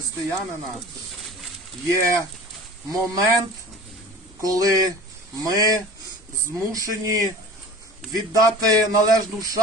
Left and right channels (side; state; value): both; normal; correlation 0.39